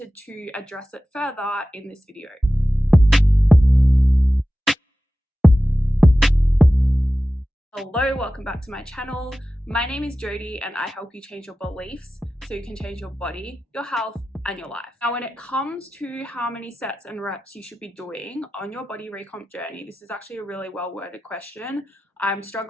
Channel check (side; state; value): both; normal; correlation 0.95